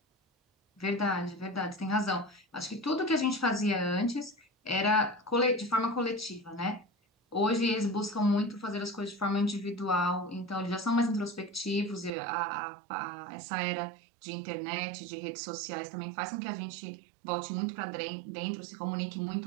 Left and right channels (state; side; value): drops out; left; at 12.1 s